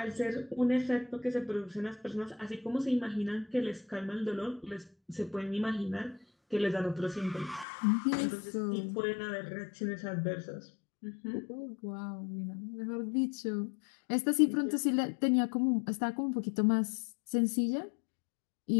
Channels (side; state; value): right; drops out; at 7.7 s